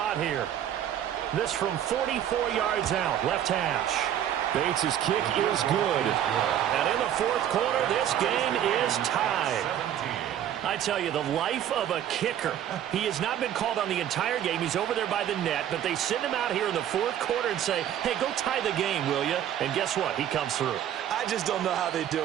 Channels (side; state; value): left; quieter; 10.6 dB